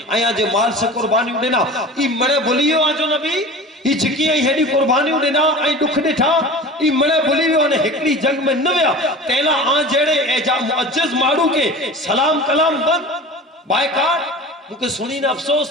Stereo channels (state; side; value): normal; both; correlation 0.36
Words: آیا جے مال سے قربانی ہوئی ای مڑے بھولیو آنجو نبی ای جکی آئی ہیڈی قربانی ہوئی آئی دکھ ڈٹھا ای مڑے بھولیو آنے ہکڑی جنگ میں نویا تیلا آن جیڑے ایجا معجز مارو کے سلام کلام بند بائیکار مکہ سنی نے افسوس